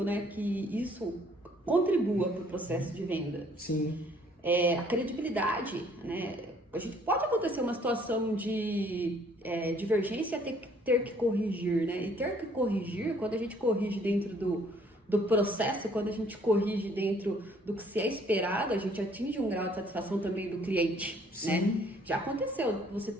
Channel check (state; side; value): normal; both; correlation 0.61